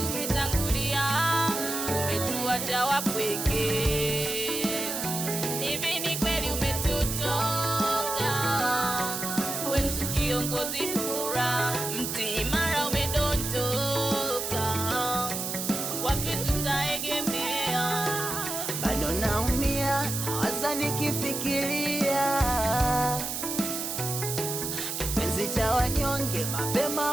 umetangulia, umetuacha wapweke. Hivi ni kweli umetutoka, wetu kiongozi bora, mti imara umedondoka, wapi tutaegemea? Bado naumia, nawaza nikifikiria kipenzi cha wanyonge, mapema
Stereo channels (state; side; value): noise; right; hiss, 3 dB below the sound